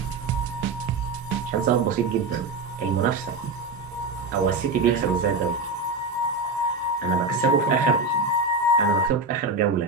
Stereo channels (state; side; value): quieter; left; 3.3 dB